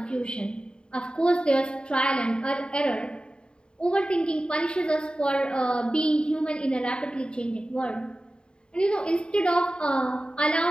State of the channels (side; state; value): right; late; 0.050 ms